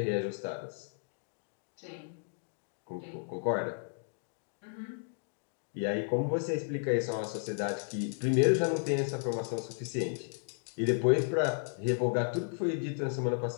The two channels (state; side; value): silent; right; digital silence